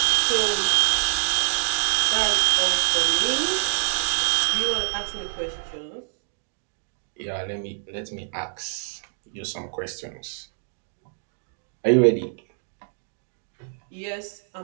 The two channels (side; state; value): left; silent; digital silence